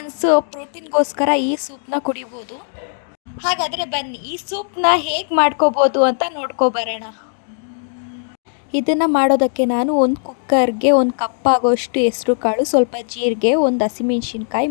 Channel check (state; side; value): silent; right; digital silence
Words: ಪ್ರೋಟೀನ್ಗೋಸ್ಕರ ಈ ಸೂಪ್ನ ಕುಡಿಬೋದು. ಹಾಗಾದರೆ ಬನ್ನಿ ಈ ಸೂಪ್ನ ಹೇಗೆ ಮಾಡ್ಕೋಬೋದು ಅಂತ ನೋಡ್ಕೊಬರೋಣ. ಇದನ್ನು ಮಾಡೋದಕ್ಕೆ ನಾನು ಒಂದು ಕುಕ್ಕರ್ಗೆ 1 ಕಪ್ ಆಗೋಷ್ಟು ಹೆಸರು ಕಾಳು, ಸ್ವಲ್ಪ ಜೀರಿಗೆ, 1 ಹಸಿಮೆಣ್ಸಿನ್ಕಾಯಿ,